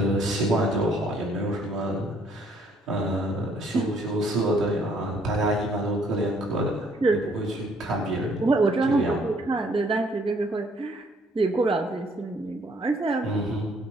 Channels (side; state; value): both; normal; correlation 0.64